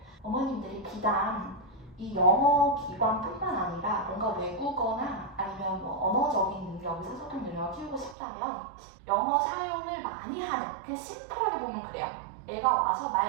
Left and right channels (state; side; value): drops out; left; at 8.2 s